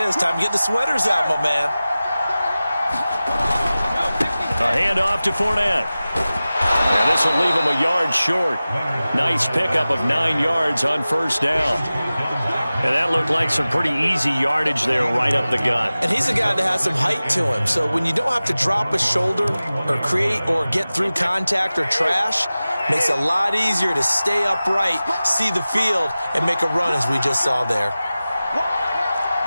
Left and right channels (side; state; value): both; inverted; correlation -0.96